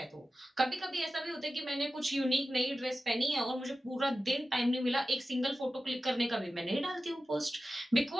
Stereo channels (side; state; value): both; normal; correlation 0.94